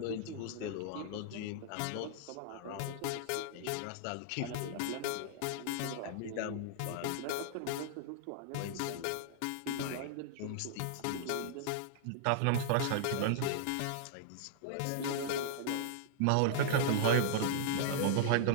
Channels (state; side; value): different; both; correlation -0.01